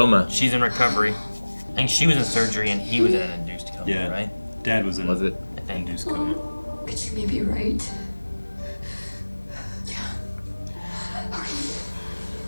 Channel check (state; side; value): inverted; both; correlation -1.00